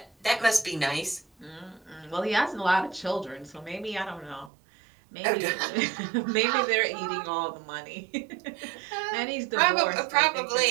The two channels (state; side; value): drops out; left; at 4.5 s